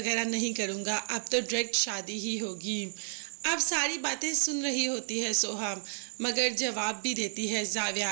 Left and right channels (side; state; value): left; silent; 57 dB below the other